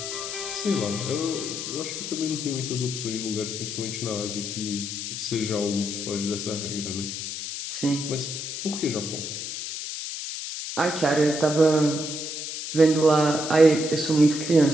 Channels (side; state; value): left; noise; hiss, 6 dB below the sound